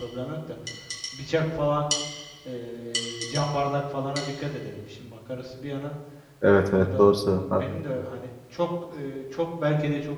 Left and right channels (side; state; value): both; identical; correlation 1.00